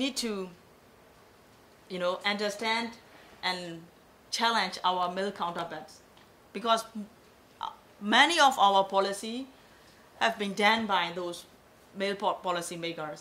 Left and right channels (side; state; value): both; identical; correlation 1.00